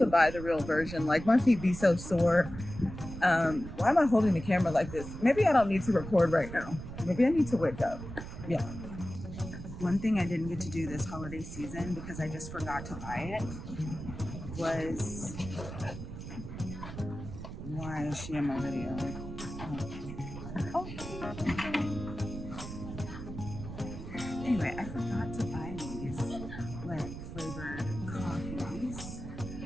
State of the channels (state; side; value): noise; right; rumble, 10 dB below the sound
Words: buy the real version. Like, my feet be so sore. Why am I holding the camera like this? Maybe I don't need to record right now. Maybe I need to wake up. Yeah. One thing I didn't get to do this holiday season because I just forgot to buy it was, why is she in my video? Oh. Anyway, I forgot to buy these like flavored coffees.